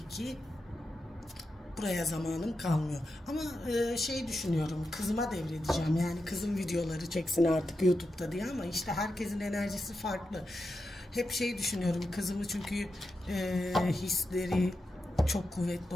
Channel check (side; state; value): both; normal; correlation 0.88